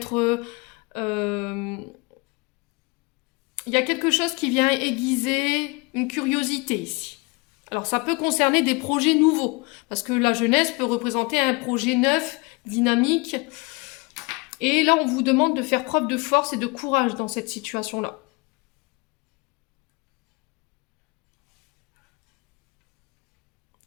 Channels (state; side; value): quieter; right; 27.3 dB